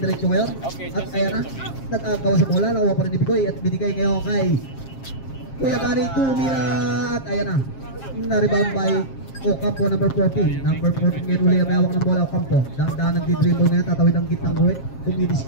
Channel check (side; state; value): right; late; 7.5 ms